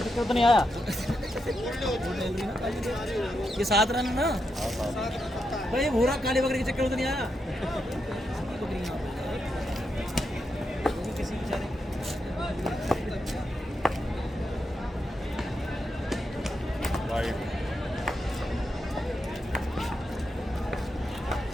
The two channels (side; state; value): both; normal; correlation 0.84